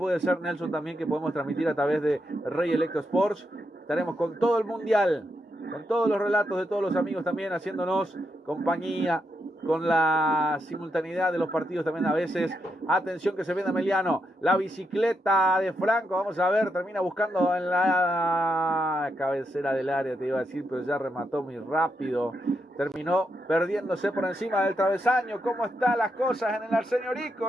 ser, Nelson, también que podemos transmitir a través de Rey Electro Sports. Estaremos con todo el Mundial, con todos los relatos de todos los amigos también haciéndonos compañía, con la simultaneidad de los partidos también a veces. Atención que se viene Emiliano, la bicicleta de Franco, vamos a ver, termina buscando en la cabecera del área, te iba a decir, pero ya remató muy rápido, terminó perdiéndose por encima del travesaño. ¿Cómo están las cosas en el Arsenio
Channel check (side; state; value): both; normal; correlation 0.82